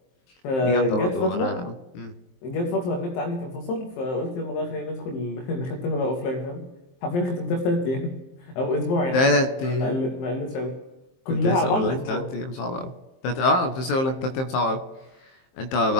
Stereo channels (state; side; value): late; right; 23 ms